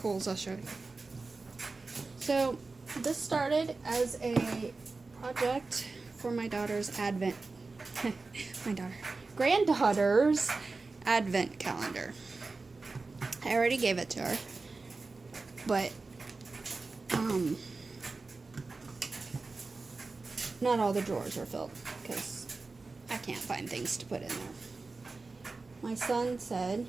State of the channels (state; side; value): quieter; left; 3.8 dB